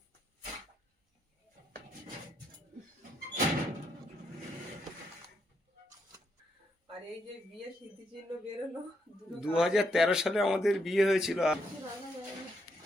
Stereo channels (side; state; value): both; normal; correlation 0.78